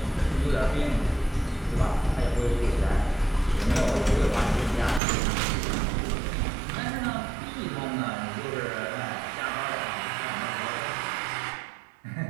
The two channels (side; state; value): left; drops out; at 5.0 s